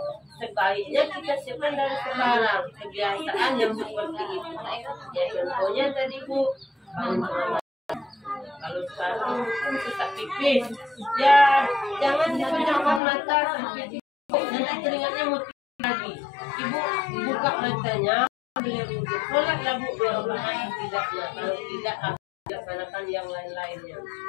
sebaiknya kita siapkan dari sekarang, kebiasaan yang seperti itu. Ya contohnya tadi Bu, kalau sekarang sesak pipis, ya jangan dipejamkan mata sampai pipis, nanti keringatnya mesti lagi. Ibu buka matanya, sholatlah Bu 2 rakaat tidaknya, kalau tidak laksanakan yang lain-lainnya.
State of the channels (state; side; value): drops out; right; at 13.0 s